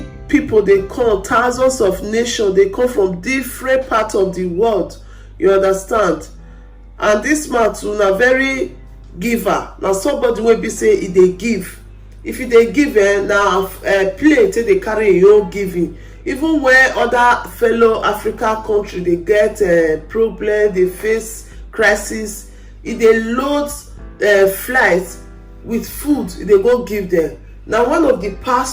people they come, thousands of nations, they come from different parts of the world, you understand. And this man too na very giver. Now somebody wey be say e dey give. If you dey give, now play till they carry your own giving. Even where other fellow African country they get problem, they face crisis, if they load flights with food, they go give them. Now one of the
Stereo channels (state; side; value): identical; both; correlation 1.00